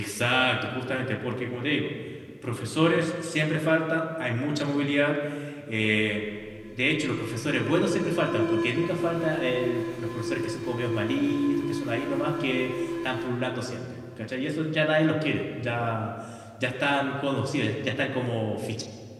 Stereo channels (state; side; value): identical; both; correlation 1.00